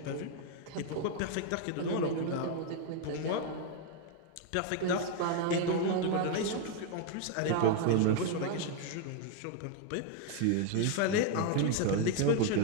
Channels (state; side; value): different; both; correlation 0.01